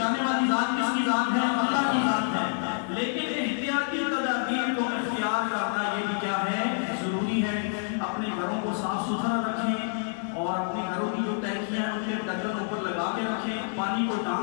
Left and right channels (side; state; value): right; silent; digital silence